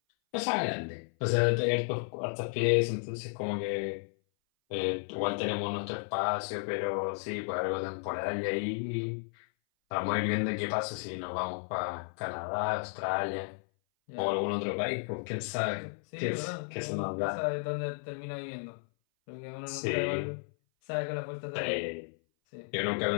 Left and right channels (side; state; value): right; silent; 56 dB below the other